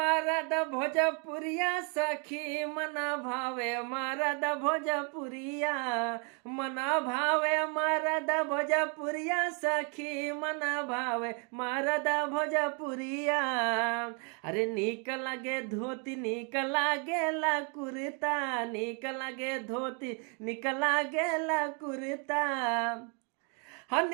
भोजपुरिया सखी, मना भावे मरद भोजपुरिया, मना भावे मरद भोजपुरिया सखी, मना भावे मरद भोजपुरिया। अरे नीक लगे धोती, नीक लागेला कुर्ता, नीक लगे धोती, नीक लागेला कुर्ता।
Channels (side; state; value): left; quieter; 36.8 dB